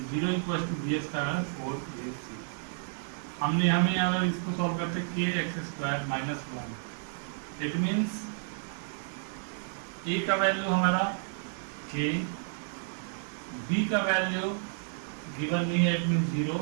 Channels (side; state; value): left; silent; digital silence